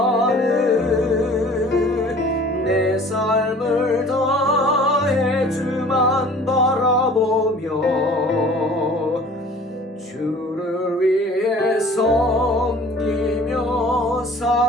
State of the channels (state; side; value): normal; both; correlation 0.48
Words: 내 삶을 다해 주만 바라보며 주를 위해 섬기며